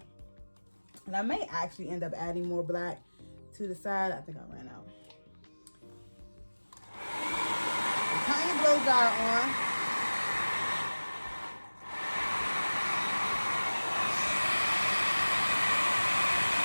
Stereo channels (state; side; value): inverted; both; correlation -1.00